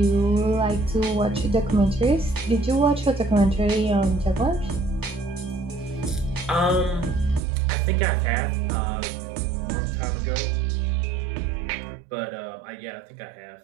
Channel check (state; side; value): drops out; left; at 7.4 s